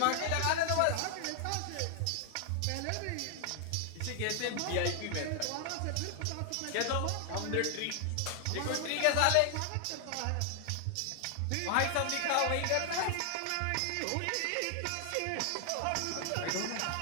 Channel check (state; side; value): different; both; correlation 0.00